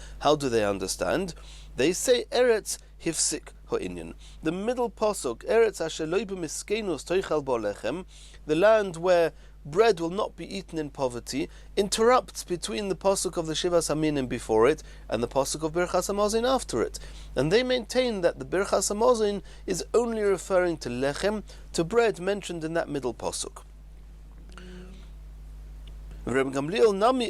how do they understand? They say Eretz Hifsik Ha'inyan. The middle pasuk, Eretz asher lo b'miskenus toichal bo lechem, the land where bread will not be eaten in poverty, interrupts between the pasuk of the Shivas Aminim before it and the pasuk of Birchas Hamazon after it. And they maintain that the Birchas Hamazon is only referring to lechem, to bread mentioned in that middle pasuk. Reb Gamliel Nami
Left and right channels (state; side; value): identical; both; correlation 1.00